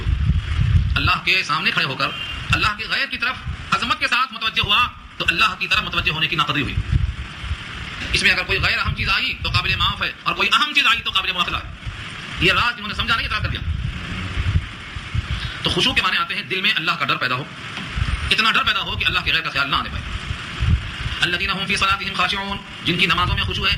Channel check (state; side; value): identical; both; correlation 1.00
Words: ہو. اللہ کے سامنے کھڑے ہو کر اللہ کے غیر کی طرف عظمت کے ساتھ متوجہ ہوا تو اللہ کی طرف متوجہ ہونے کی ناقدری ہوئی. اس میں اگر کوئی غیر اہم چیز آئی تو قابل معاف ہے, اور کوئی اہم چیز آئی تو قابل مواخذہ ہے. یہ راز جنہوں نے سمجھا نہیں اعتراض کر دیا. تو خشوع کے معنی آتے ہیں دل میں اللہ کا ڈر پیدا ہو, اتنا ڈر پیدا ہو کہ اللہ کے غیر کا خیال نہ آنے پائے. الذین هم فی صلاتهم خاشعون, جن کی نمازوں میں خشوع ہے,